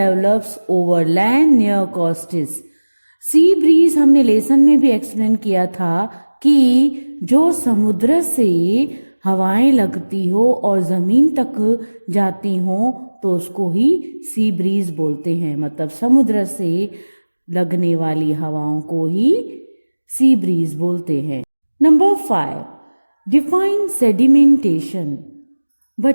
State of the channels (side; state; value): both; inverted; correlation -1.00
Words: over land near coasts. Sea breeze हमने लेसन में भी एक्सप्लेन किया था कि जो समुद्र से हवाएं लगती हो और जमीन तक जाती हो तो उसको ही सी ब्रीज बोलते हैं। मतलब समुद्र से लगने वाली हवाओं को ही सी ब्रीज बोलते हैं। Number 5, define sedimentation.